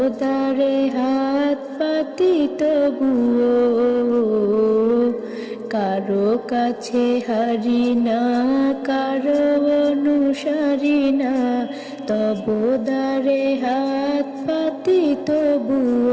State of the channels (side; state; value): both; identical; correlation 1.00